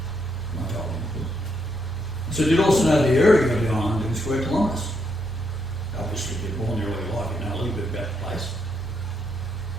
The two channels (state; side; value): normal; both; correlation 0.77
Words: I told him. I said, you'd also know the area of the island in square kilometres. Obviously, if you're born there all your life, you know a little bit about the place.